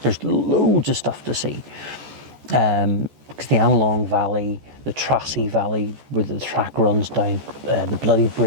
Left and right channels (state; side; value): late; left; 14 ms